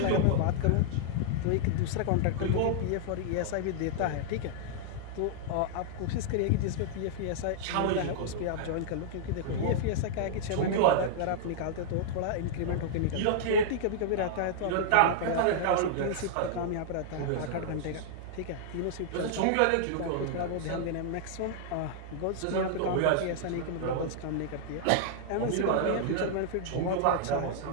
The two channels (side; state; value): both; different; correlation -0.01